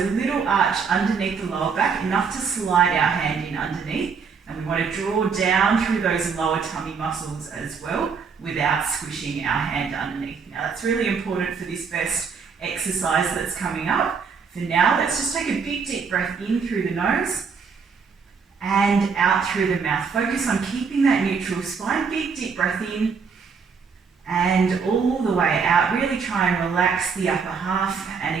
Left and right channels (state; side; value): quieter; left; 5.7 dB